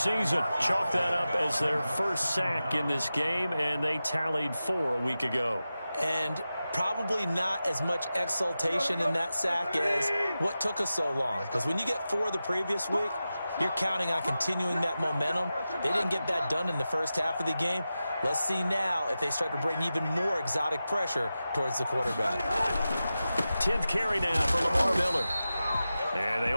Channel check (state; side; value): inverted; both; correlation -0.93